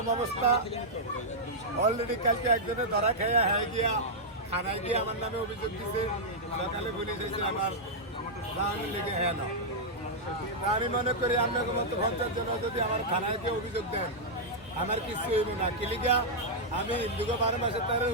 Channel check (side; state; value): both; normal; correlation -0.07